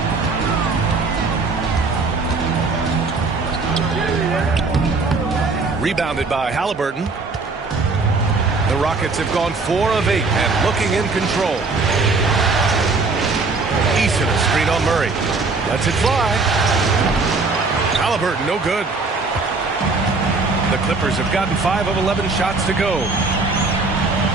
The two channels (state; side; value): quieter; left; 3.9 dB